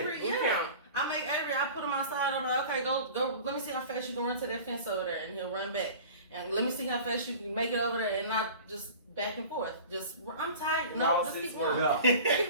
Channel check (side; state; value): both; inverted; correlation -0.40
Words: that. Yeah. I make Avery. I put him outside. I'm like, okay, go. Let me see how fast you can run to that fence over there, and he'll run back. And let me see how fast you can make it over there, and not just back and forth. Just I'm tired. No, just keep going. Yeah. Keep